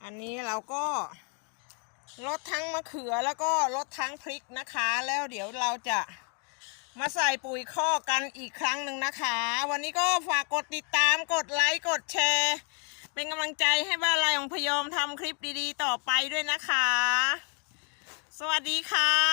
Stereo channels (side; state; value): right; quieter; 39.7 dB